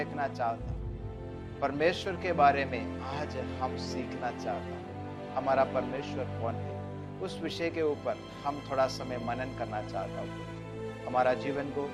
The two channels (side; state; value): both; identical; correlation 1.00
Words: चाहता हूँ। परमेश्वर के बारे में आज हम सीखना चाहता हूँ। हमारा परमेश्वर कौन है, उस विषय के ऊपर हम थोड़ा समय मनन करना चाहता हूँ। हमारा जीवन को